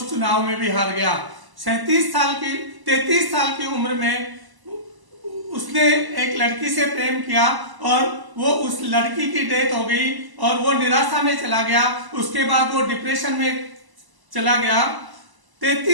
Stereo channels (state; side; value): late; left; 1.0 ms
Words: चुनाव में भी हार गया। 33 साल की उम्र में उसने एक लड़की से प्रेम किया और वो उस लड़की की डेथ हो गई और वो निराशा में चला गया। उसके बाद वो डिप्रेशन में चला गया।